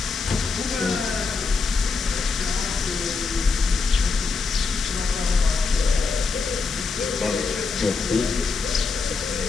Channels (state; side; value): quieter; right; 4.5 dB